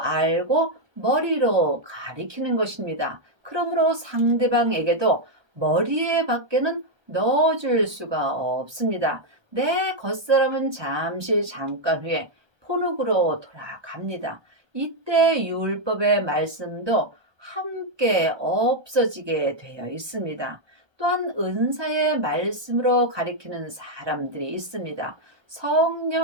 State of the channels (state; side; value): late; left; 1.3 ms